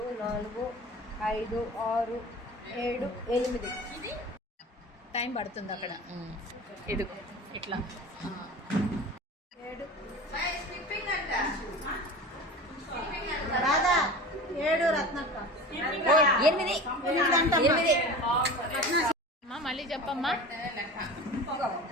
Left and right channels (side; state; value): both; normal; correlation 0.35